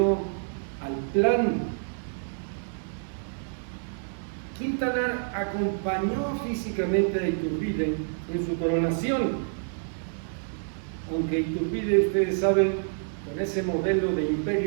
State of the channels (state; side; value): silent; left; digital silence